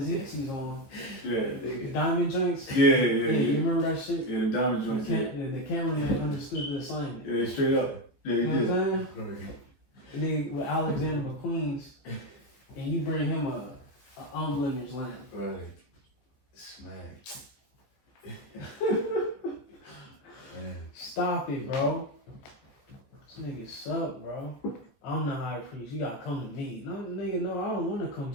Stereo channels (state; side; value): late; right; 14 ms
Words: on. Yeah. The diamond joints. Yeah. You remember that shit? Yeah, the diamond joints. The cameraman understood the assignment. Yeah, straight up. Yeah, he You know did. what I'm saying? And then with Alexander McQueen's, and you bring him a unblemished lamb. Right. Smack. Stop it, bro. This nigga suck, bro. I'm the high priest. You gotta come to me. No, nigga, no, I don't want to come